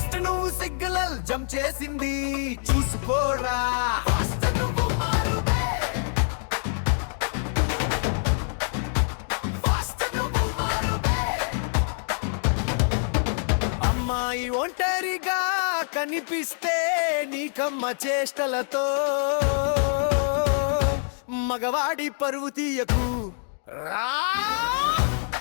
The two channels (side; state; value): right; silent; digital silence